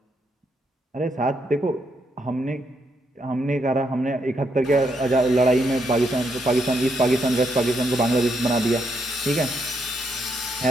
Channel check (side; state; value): both; normal; correlation 0.77